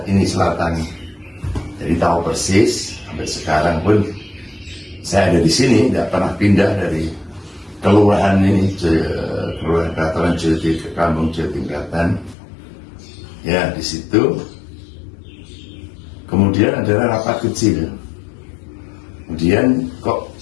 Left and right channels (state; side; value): drops out; right; at 12.4 s